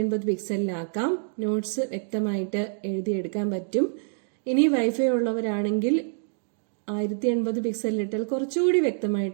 പിക്സലിലാക്കാം. നോട്ട്സ് വ്യക്തമായിട്ട് എഴുതിയെടുക്കാൻ പറ്റും. ഇനി വൈഫൈ ഉള്ളവരാണെങ്കിൽ 1080 പിക്സലിലിട്ടാൽ കുറച്ചുകൂടി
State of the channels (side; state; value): left; silent; digital silence